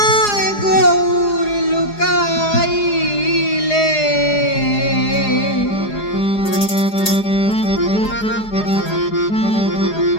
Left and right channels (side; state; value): right; late; 4.8 ms